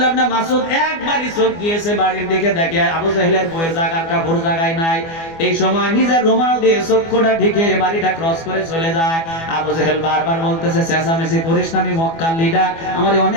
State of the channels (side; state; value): right; late; 24 ms